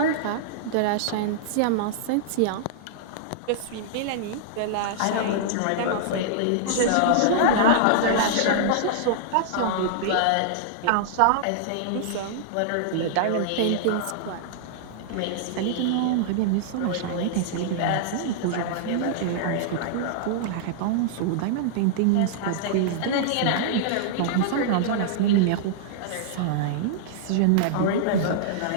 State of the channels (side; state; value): both; different; correlation -0.01